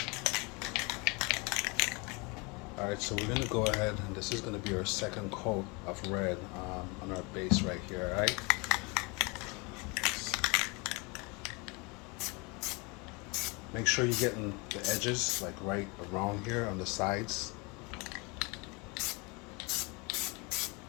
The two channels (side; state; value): right; quieter; 28.4 dB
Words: All right, so we're gonna go ahead, and this is gonna be our second coat of red on our base right here. All right. Make sure you're getting the edges like right around here on the sides.